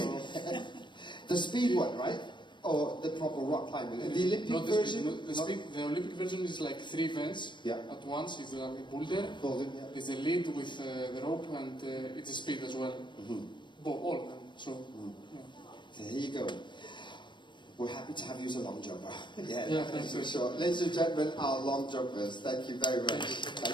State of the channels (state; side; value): late; right; 0.22 ms